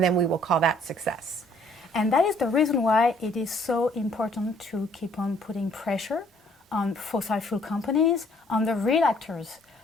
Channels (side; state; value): both; normal; correlation 0.62